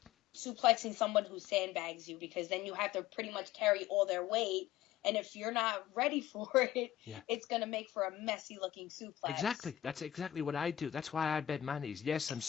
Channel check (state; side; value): quieter; right; 12.8 dB